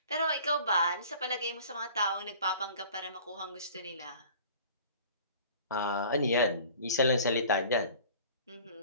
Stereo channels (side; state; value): both; inverted; correlation -0.46